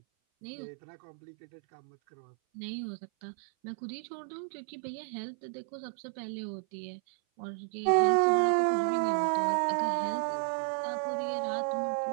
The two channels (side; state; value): left; silent; 56 dB below the other